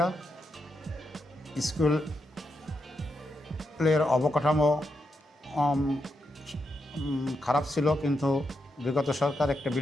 স্কুলের অবকাঠামো খারাপ ছিল, কিন্তু বিগত সরকার একটা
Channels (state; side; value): normal; both; correlation 0.84